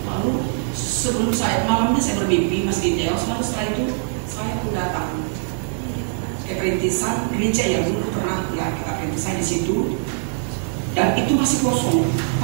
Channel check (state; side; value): silent; left; 56 dB below the other